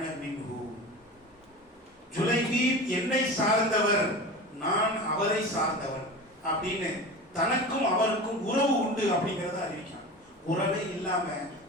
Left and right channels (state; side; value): normal; both; correlation 0.31